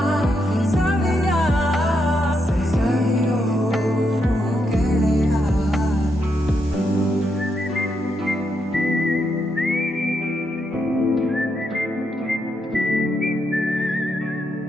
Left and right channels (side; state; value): both; normal; correlation 0.80